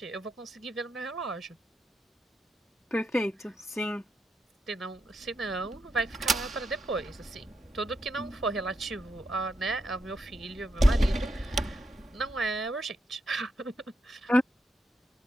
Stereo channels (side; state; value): both; normal; correlation 0.83